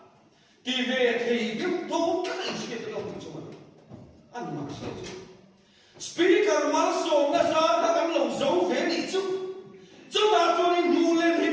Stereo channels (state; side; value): identical; both; correlation 1.00